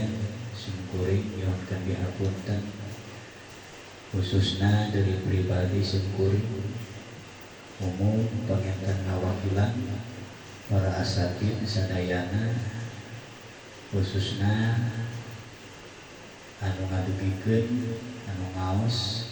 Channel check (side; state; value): both; identical; correlation 1.00